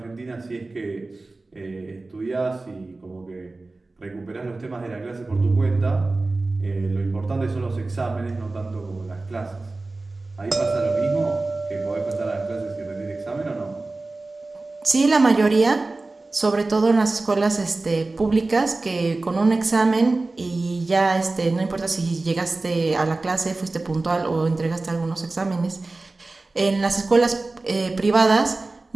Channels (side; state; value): left; quieter; 3.3 dB